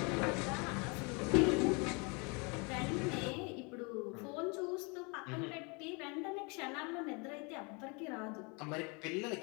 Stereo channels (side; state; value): right; quieter; 30.9 dB